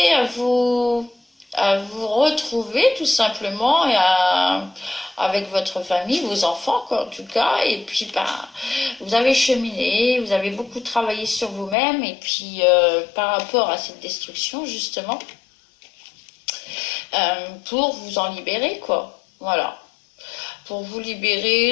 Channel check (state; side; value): drops out; right; at 11.8 s